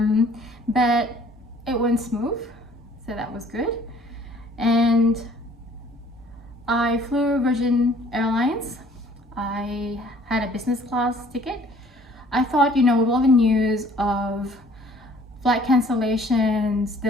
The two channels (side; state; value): both; normal; correlation 0.56